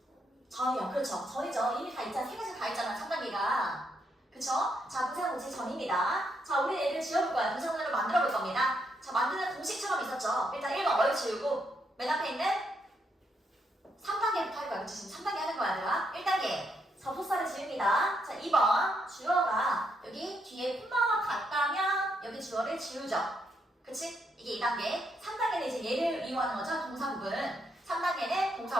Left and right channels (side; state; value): both; normal; correlation 0.77